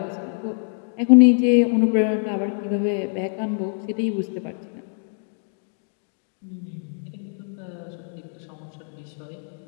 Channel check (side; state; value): right; silent; digital silence